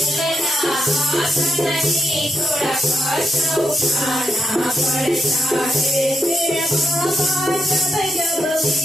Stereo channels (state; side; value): normal; both; correlation 0.83